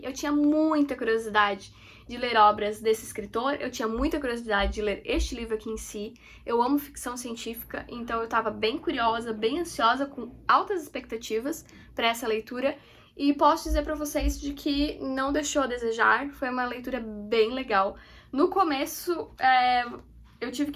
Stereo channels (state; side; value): identical; both; correlation 1.00